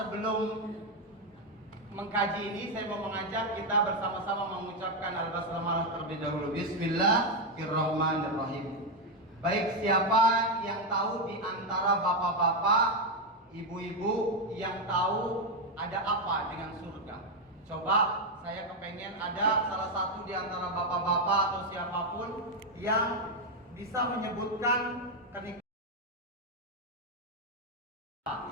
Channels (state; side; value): normal; both; correlation 0.05